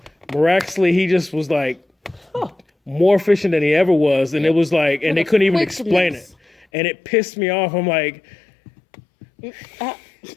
miraculously, he just was like more efficient than he ever was. And it was like, and they couldn't even explain it. And it pissed me off. I'm like,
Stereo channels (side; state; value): right; drops out; at 6.7 s